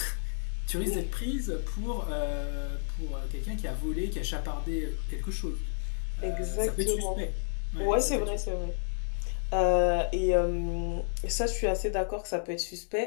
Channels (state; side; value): silent; right; digital silence